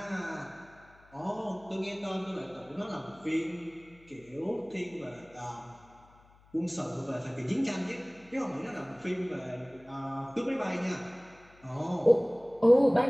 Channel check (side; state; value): left; noise; hum, 27 dB below the sound